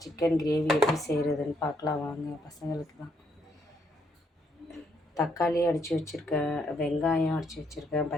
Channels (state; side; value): normal; both; correlation 0.73